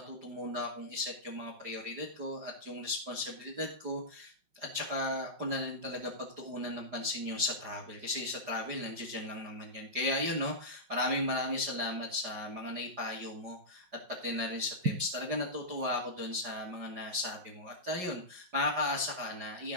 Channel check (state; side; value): late; left; 5.5 ms